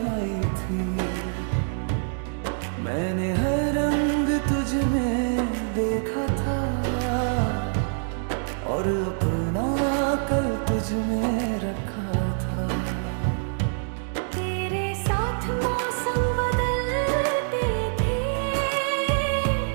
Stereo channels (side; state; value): left; silent; digital silence